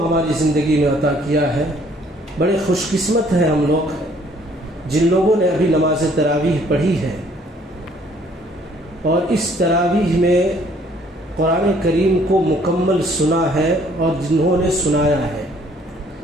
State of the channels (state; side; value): normal; both; correlation 0.61